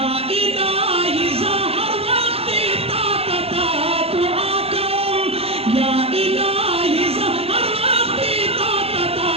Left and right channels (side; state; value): left; late; 0.29 ms